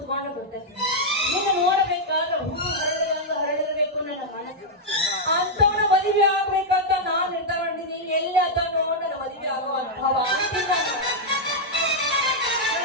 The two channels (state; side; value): normal; both; correlation -0.03